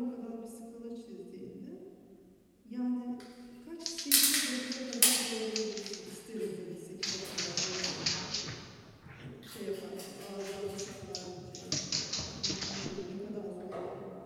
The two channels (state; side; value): identical; both; correlation 1.00